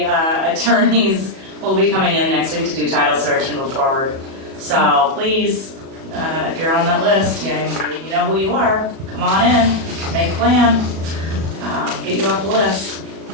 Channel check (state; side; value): late; left; 37 ms